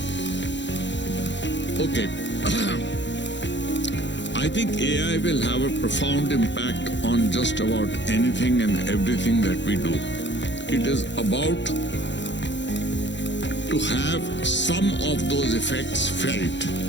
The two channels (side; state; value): right; late; 0.52 ms